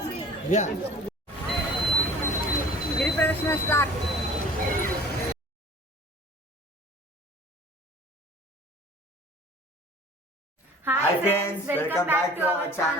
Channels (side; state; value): both; normal; correlation 0.46